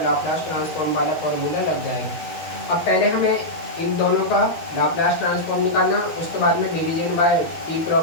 लाप्लास ट्रांसफॉर्म वाला फॉर्मूला लग जाएगा। अब पहले हमें इन दोनों का लाप्लास ट्रांसफॉर्म निकालना, उसके बाद में डिवीजन बाय टी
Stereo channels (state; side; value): late; right; 12 ms